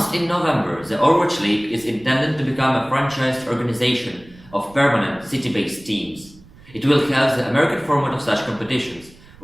in November, the Overwatch League is intended to become a franchised organization of permanent city-based teams. It will have the American format of such competitions,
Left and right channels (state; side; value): noise; right; rumble, 24 dB below the sound